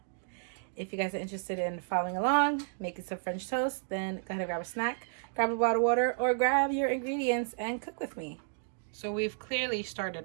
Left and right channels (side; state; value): left; silent; digital silence